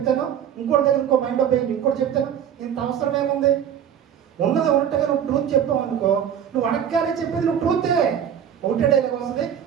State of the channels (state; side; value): quieter; left; 8.9 dB